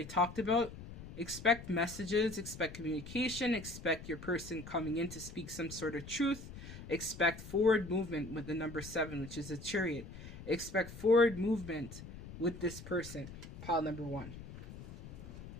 talked about, expect messages, expect communication, expect your person coming in to speak some sort of truth. Expect forward movement with the number 7, which is a chariot. Expect forward movement with this person, pile number 1.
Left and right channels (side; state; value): left; noise; rumble, 13 dB below the sound